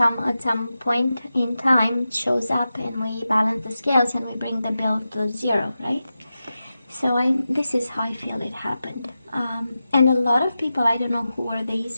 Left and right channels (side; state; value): both; inverted; correlation -0.92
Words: some point in time it shows up, and we balance the scales and we bring the bill to zero, right? So this is how I feel it happened. And a lot of people, I don't know who are these